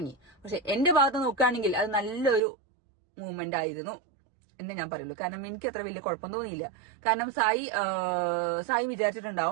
പക്ഷെ എന്റെ ഭാഗത്ത് നോക്കുകയാണെങ്കിൽ അത് നല്ലൊരു മൂവ്മെന്റ് ആയിരുന്നു എന്ന് ഞാൻ പറയുള്ളൂ. കാരണം എനിക്ക് അത്ര വലിയ കുഴപ്പം തോന്നിയില്ല. കാരണം സായി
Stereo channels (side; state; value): left; drops out; at 2.4 s